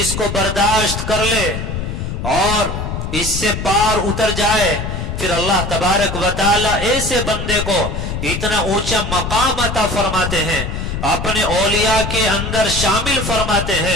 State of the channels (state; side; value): noise; left; rumble, 4 dB below the sound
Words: کو برداشت کر لے اور اس سے پار اتر جائے، پھر اللہ تبارک و تعالی ایسے بندے کو اتنا اونچا مقام عطا فرماتے ہیں، اپنے اولیاء کے اندر شامل فرماتے